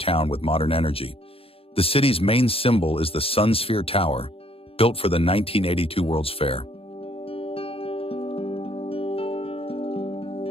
with modern energy. The city's main symbol is the Sun Sphere Tower, built for the 1982 World's Fair.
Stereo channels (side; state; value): right; late; 0.27 ms